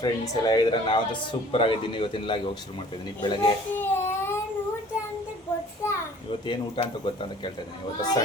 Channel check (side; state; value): both; normal; correlation 0.51